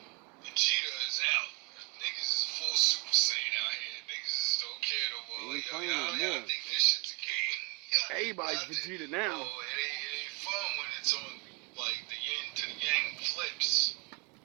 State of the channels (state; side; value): quieter; left; 31.6 dB